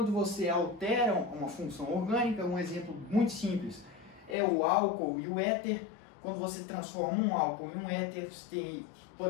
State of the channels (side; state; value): right; drops out; at 4.4 s